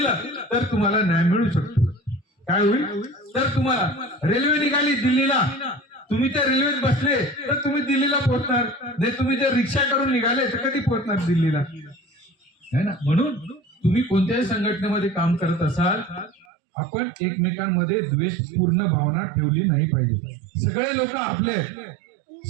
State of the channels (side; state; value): left; drops out; at 16.4 s